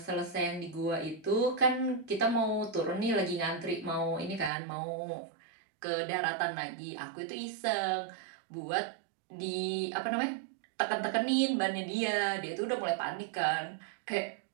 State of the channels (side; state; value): left; drops out; at 4.5 s